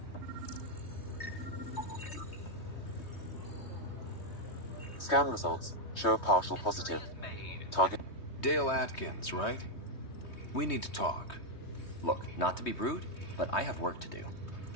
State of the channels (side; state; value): right; late; 3.2 ms